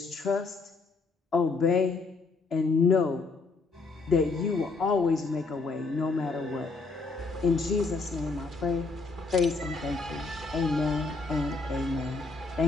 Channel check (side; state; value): right; quieter; 4.0 dB